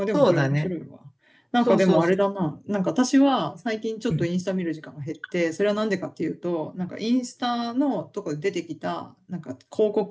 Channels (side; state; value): both; identical; correlation 1.00